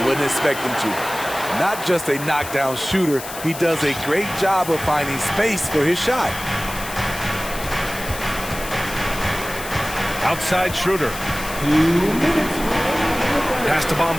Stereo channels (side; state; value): left; noise; hiss, 11 dB below the sound